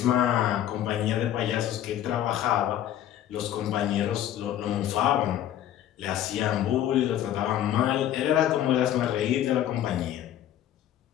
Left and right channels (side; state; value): right; quieter; 11.5 dB